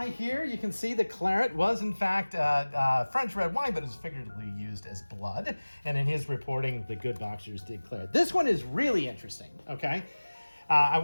here. You can see the claret was, in fact, French red wine, but is figuratively used as blood. And in his reporting, the good boxers did claret. This one is really interesting, okay? I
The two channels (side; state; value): both; inverted; correlation -1.00